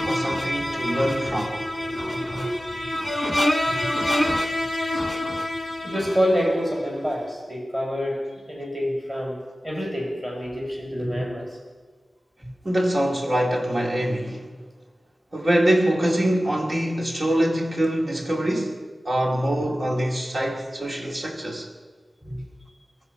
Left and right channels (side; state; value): both; normal; correlation 0.95